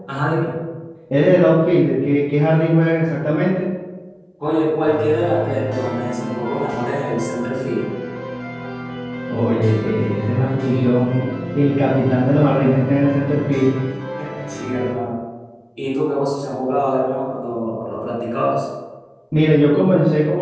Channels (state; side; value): identical; both; correlation 1.00